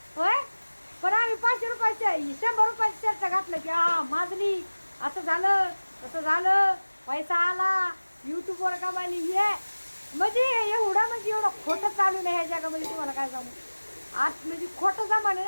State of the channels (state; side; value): inverted; both; correlation -1.00